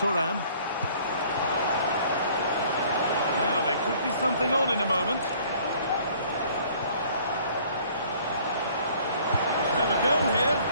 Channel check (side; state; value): both; inverted; correlation -0.56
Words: Now, there could be something on in a moment. We'll have a go here.